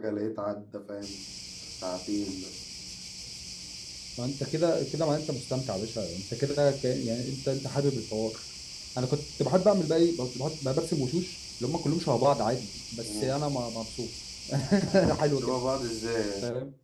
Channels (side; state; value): both; identical; correlation 1.00